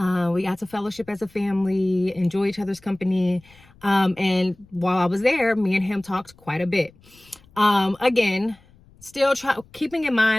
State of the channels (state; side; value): noise; left; rumble, 27 dB below the sound